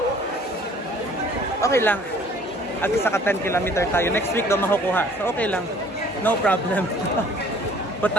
Okay lang. At saka 10 kilometer tayo. Next week daw makukuha. So okay lang. No problem.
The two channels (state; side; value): normal; both; correlation 0.54